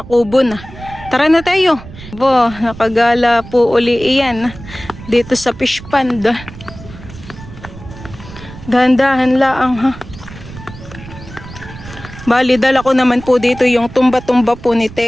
kubo na. Tara na tayo. Bo, nakagala po uli iyan dito sa fish pond. Dahan-dahan laang ha. Bali, dala ko naman po dito yung tumba-tumba po ni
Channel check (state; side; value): noise; right; rumble, 16 dB below the sound